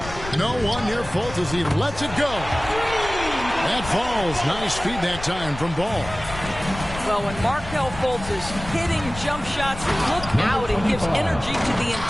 No one near Fultz as he lets it go. That falls. Nice feed that time from Ball. Well, when Markelle Fultz is hitting jump shots, look out. It gives energy to the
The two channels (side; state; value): left; noise; rumble, 11 dB below the sound